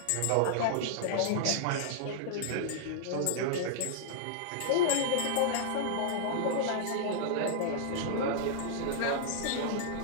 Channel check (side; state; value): both; different; correlation -0.01